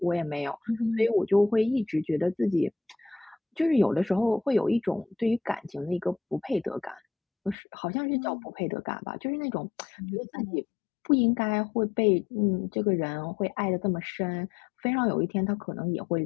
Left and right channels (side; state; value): right; drops out; at 7.6 s